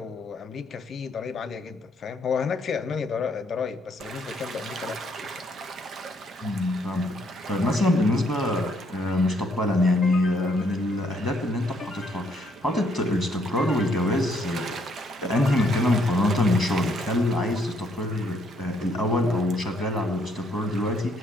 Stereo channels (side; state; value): both; normal; correlation 0.69